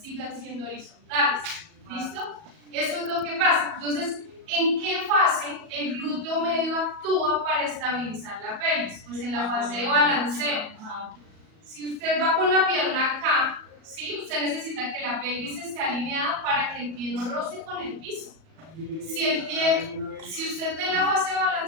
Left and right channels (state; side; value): late; left; 37 ms